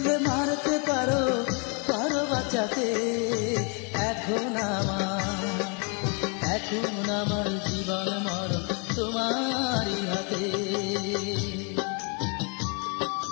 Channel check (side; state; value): right; quieter; 36.0 dB